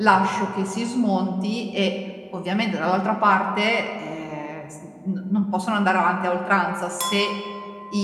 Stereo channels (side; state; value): both; identical; correlation 1.00